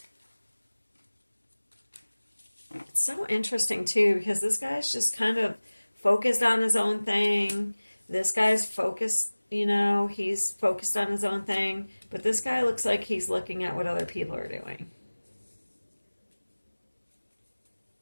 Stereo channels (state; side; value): inverted; both; correlation -1.00